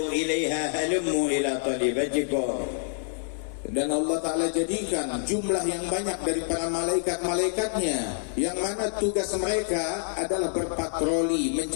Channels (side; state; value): right; silent; digital silence